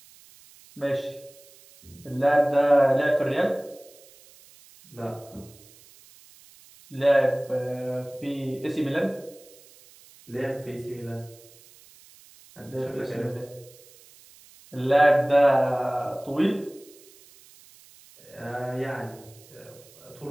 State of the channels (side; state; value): right; noise; hiss, 24 dB below the sound